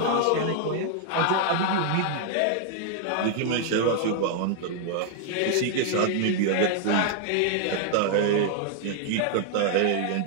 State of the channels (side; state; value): both; different; correlation 0.00